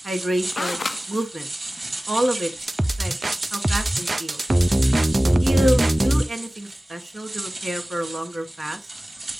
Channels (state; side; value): normal; both; correlation 0.97